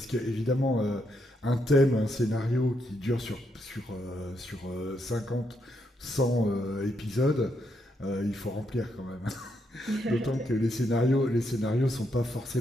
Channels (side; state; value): both; normal; correlation 0.78